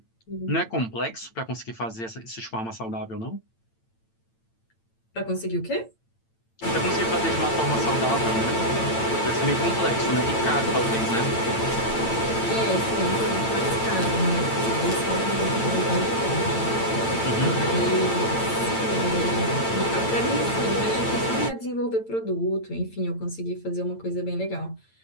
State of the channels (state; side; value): late; right; 8.9 ms